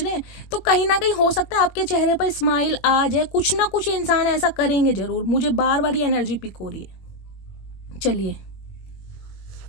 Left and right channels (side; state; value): right; late; 21 ms